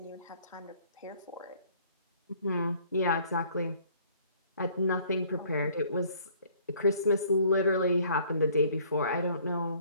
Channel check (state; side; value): inverted; both; correlation -0.58